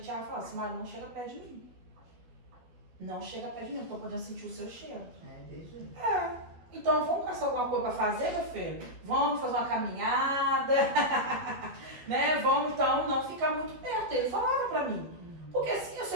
o Thiago falava assim, Mari, não chega perto de mim. Não chega perto de mim, estou podendo sentir o seu cheiro. Então vamos caçar alguma coisa para fazer, meu filho? Vamos fazer uma caminhada, né? Vamos então não ficar muito perto. Ele falava pra mim. Porque assim, se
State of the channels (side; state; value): left; late; 12 ms